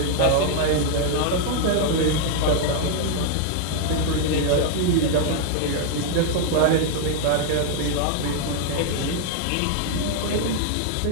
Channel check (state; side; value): different; both; correlation 0.00